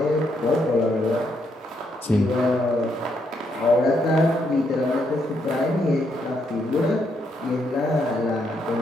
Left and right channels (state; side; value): normal; both; correlation 0.76